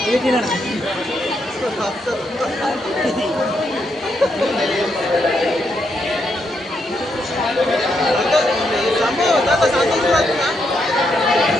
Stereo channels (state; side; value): normal; both; correlation 0.79